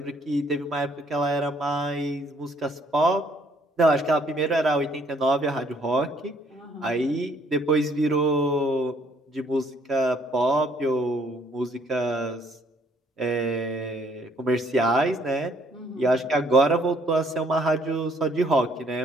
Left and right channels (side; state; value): both; normal; correlation 0.64